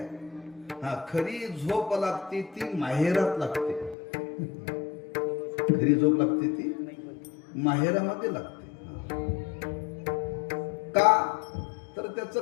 खरी झोप लागते ती माहेरात लागते. खरी झोप लागते ती माहेरामध्ये लागते. का? तर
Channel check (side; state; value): right; drops out; at 4.0 s